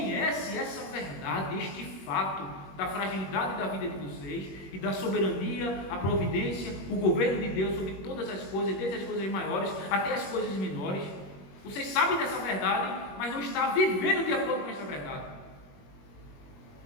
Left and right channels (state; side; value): late; right; 21 ms